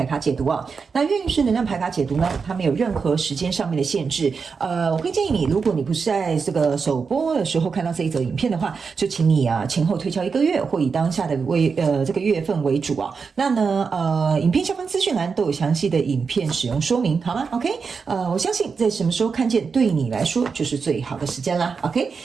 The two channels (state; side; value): quieter; left; 5.3 dB